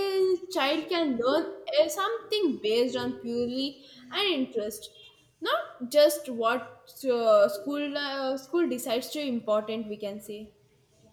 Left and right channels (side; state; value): both; identical; correlation 1.00